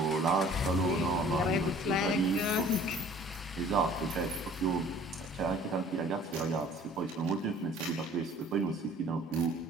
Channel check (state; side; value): normal; both; correlation 0.51